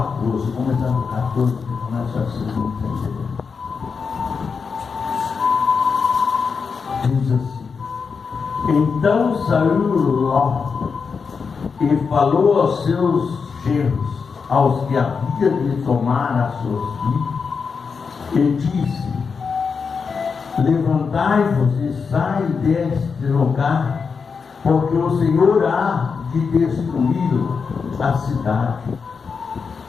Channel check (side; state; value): right; quieter; 5.5 dB